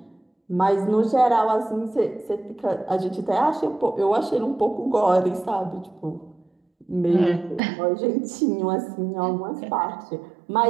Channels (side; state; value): left; drops out; at 7.6 s